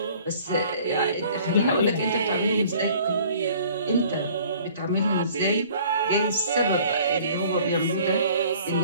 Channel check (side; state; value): both; inverted; correlation -0.53